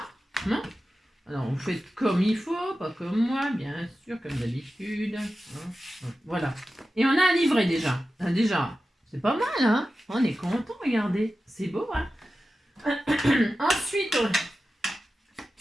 Non. Alors, vous faites comme il faut, pas comme moi, bien sûr, comme d'habitude. Voilà. Et on a un livret déjà. Déjà. C'est pas mal, hein? On est content, regardez. C'est beau, hein? Ensuite,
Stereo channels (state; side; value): normal; both; correlation 0.93